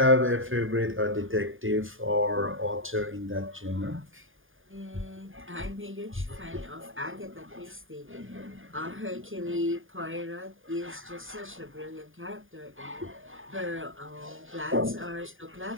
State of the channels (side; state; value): left; late; 0.59 ms